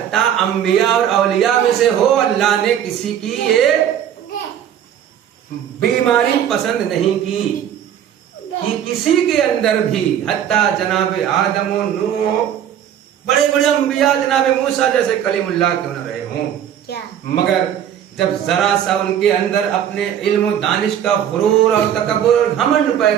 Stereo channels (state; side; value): quieter; left; 9.8 dB